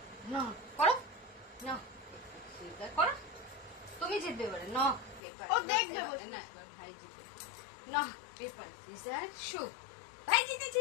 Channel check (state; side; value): drops out; right; at 5.2 s